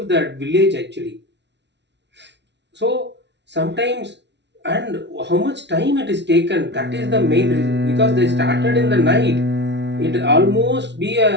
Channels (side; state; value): left; late; 0.51 ms